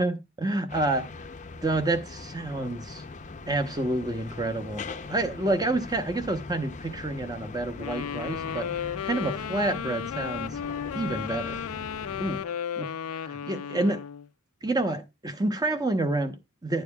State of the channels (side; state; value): both; normal; correlation 0.50